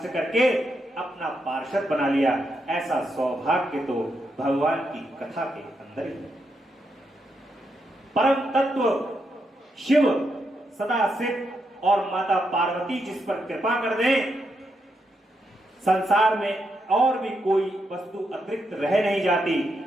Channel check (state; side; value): normal; both; correlation 0.82